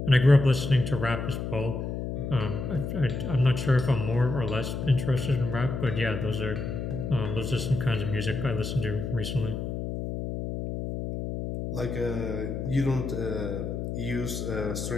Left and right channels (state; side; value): noise; left; hum, 4 dB below the sound